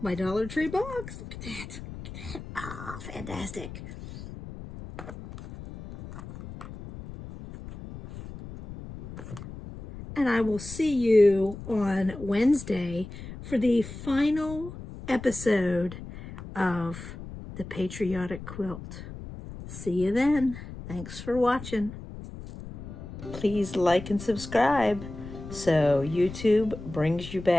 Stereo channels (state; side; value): noise; left; rumble, 12 dB below the sound